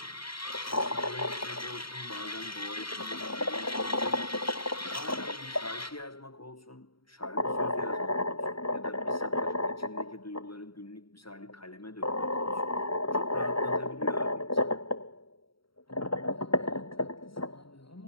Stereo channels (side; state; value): right; late; 0.74 ms